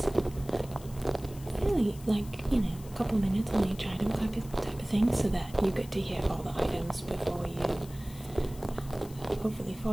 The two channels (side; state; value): left; noise; hiss, 20 dB below the sound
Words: Really, like, you know, a couple minutes on each item type of thing, so that you get to hear all the items before you hopefully